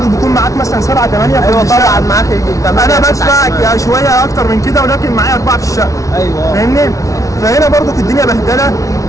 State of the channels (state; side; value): late; right; 0.16 ms